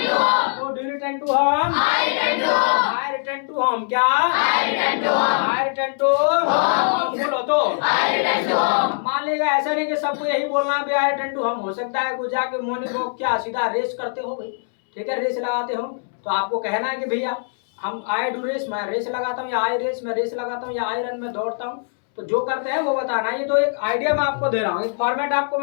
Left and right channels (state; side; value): silent; right; 64 dB below the other